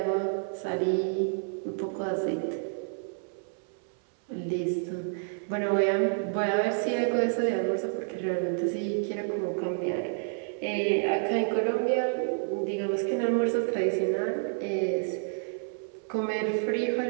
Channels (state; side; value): silent; left; 58 dB below the other